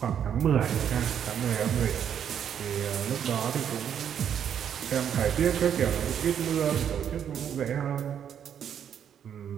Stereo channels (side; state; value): left; quieter; 8.8 dB